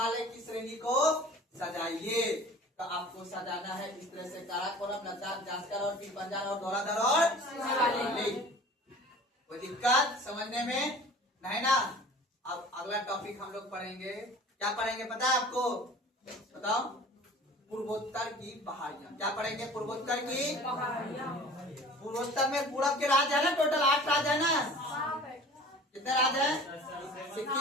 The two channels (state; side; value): normal; both; correlation 0.44